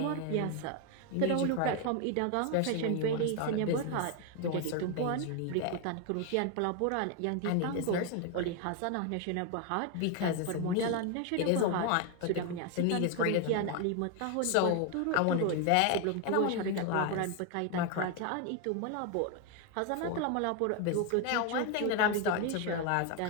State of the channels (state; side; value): different; both; correlation 0.01